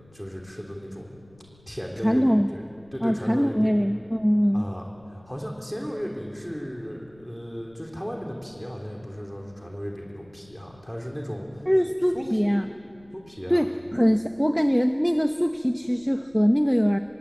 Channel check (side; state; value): left; noise; rumble, 29 dB below the sound